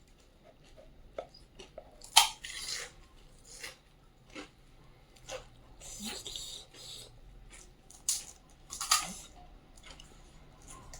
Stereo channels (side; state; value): both; identical; correlation 1.00